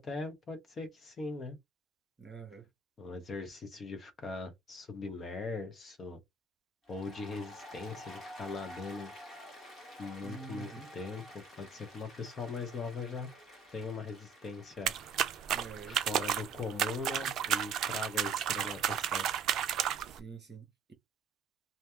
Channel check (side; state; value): left; quieter; 4.0 dB